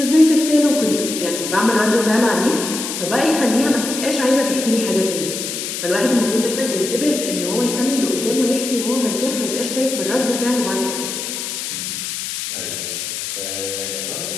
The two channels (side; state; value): left; noise; hiss, 5 dB below the sound